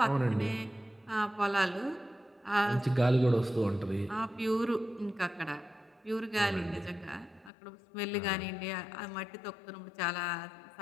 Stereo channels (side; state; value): right; drops out; at 7.5 s